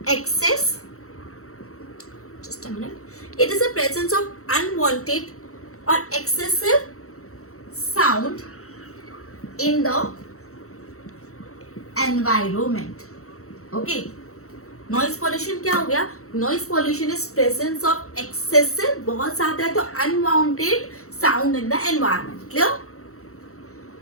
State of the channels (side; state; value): right; late; 0.64 ms